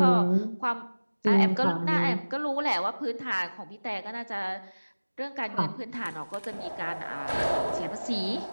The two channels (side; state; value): both; inverted; correlation -1.00